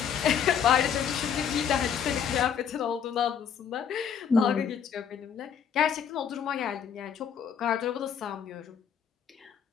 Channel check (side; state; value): right; quieter; 7.7 dB